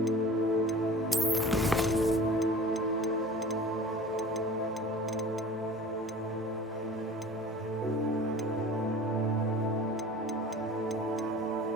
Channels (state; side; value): normal; both; correlation 0.40